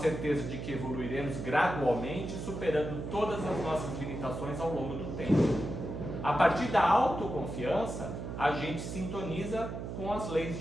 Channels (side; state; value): right; noise; hum, 6 dB below the sound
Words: de que evoluiremos gradualmente, superando todas as nossas limitações ao longo do tempo. A partir da autoconfiança, a gente sintoniza com as leis